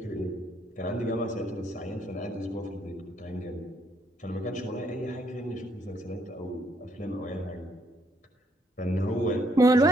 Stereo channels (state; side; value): normal; both; correlation 0.70